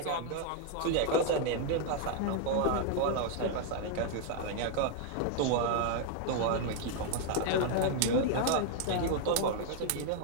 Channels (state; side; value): different; both; correlation 0.00